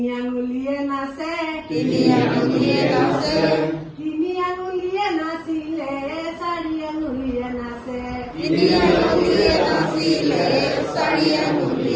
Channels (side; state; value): both; identical; correlation 1.00